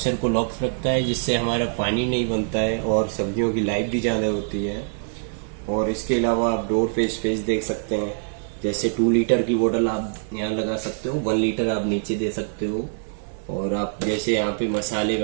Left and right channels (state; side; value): silent; left; digital silence